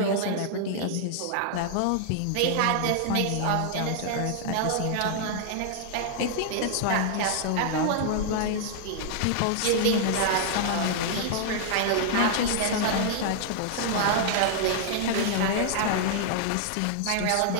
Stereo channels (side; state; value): both; different; correlation -0.01